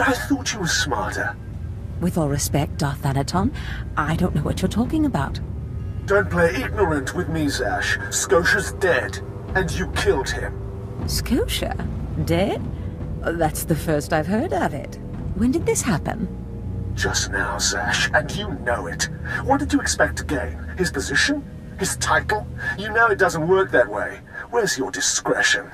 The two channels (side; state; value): both; identical; correlation 1.00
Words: I thought you were smarter. With all respect, Darth Thanaton, I don't know what you're talking about. Don't play ignorant with me, Zash. Scotia's dead, and you killed him. Scotia? Dead? That's the first I've heard of it. When did this happen? Just now, Zash, and you know it. What did you expect to gain? His position? His title? You know it doesn't work that way. Where's your discretion?